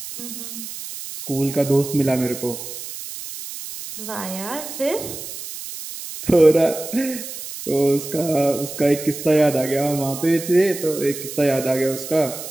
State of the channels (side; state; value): right; noise; hiss, 10 dB below the sound